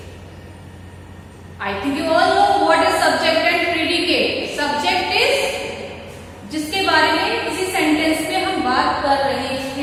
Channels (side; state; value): both; identical; correlation 1.00